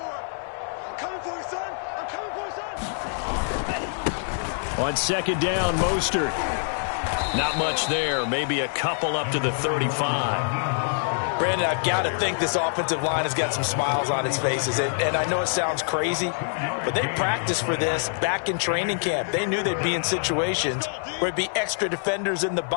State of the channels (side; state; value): right; silent; 61 dB below the other